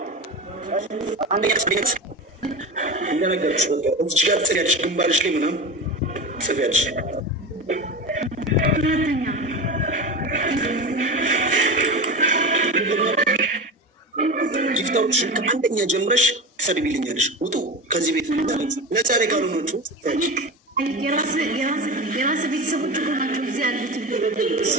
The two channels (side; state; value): both; normal; correlation 0.26